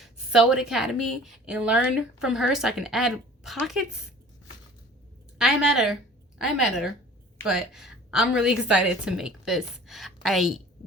Sew It Academy and learn from her so I can add pockets. I'm at her, but I'm really excited to make this. I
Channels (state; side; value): normal; both; correlation 0.46